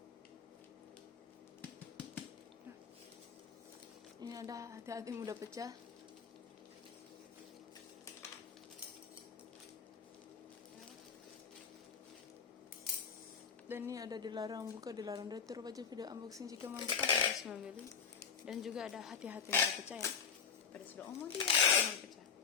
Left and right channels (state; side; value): quieter; right; 6.5 dB